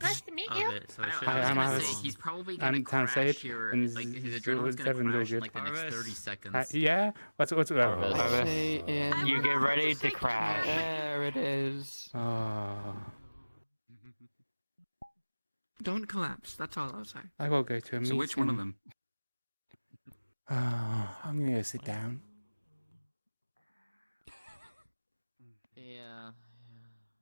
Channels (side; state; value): both; inverted; correlation -1.00